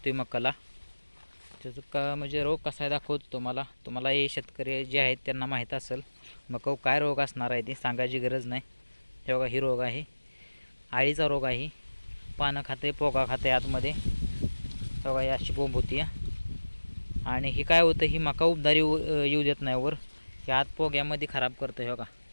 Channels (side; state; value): both; inverted; correlation -1.00